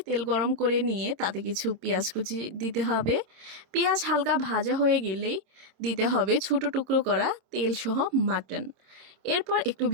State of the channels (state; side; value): late; left; 26 ms